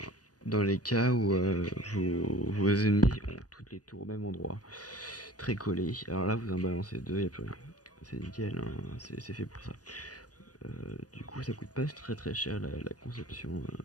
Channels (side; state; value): right; late; 0.68 ms